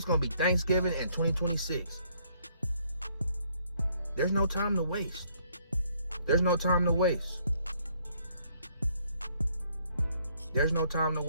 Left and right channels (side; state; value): both; inverted; correlation -0.67